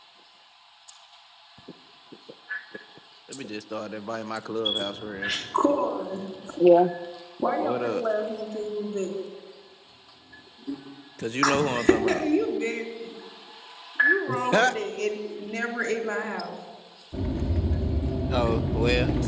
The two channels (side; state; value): both; identical; correlation 1.00